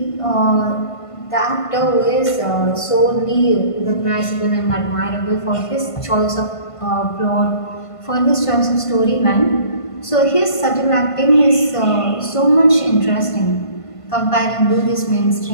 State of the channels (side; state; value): right; late; 1.5 ms